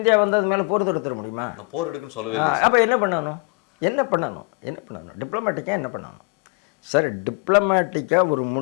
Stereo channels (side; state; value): right; quieter; 30.3 dB